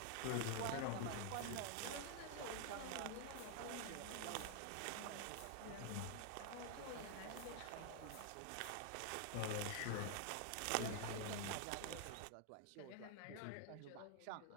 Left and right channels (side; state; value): both; different; correlation 0.00